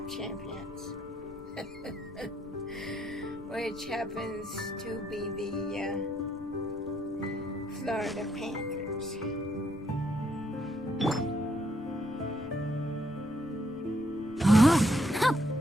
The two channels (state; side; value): noise; right; rumble, 25 dB below the sound